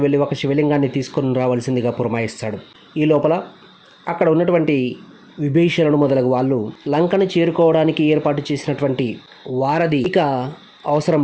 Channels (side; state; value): both; identical; correlation 1.00